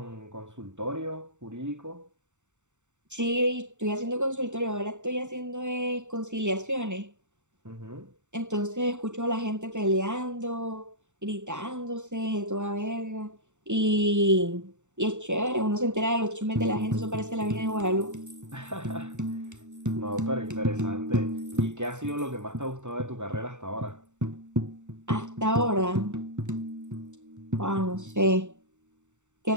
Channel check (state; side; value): late; left; 0.84 ms